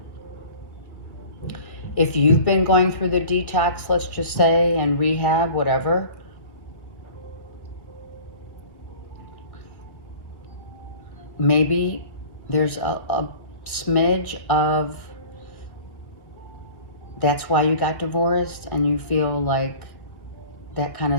if you've been going through the detox, let's just say, and rehab, whatever, maybe there's a smidge of that's why you got divorced and you feel like that kind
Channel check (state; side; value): late; right; 1.7 ms